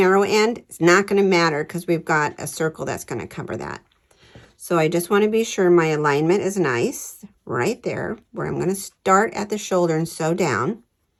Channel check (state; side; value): identical; both; correlation 1.00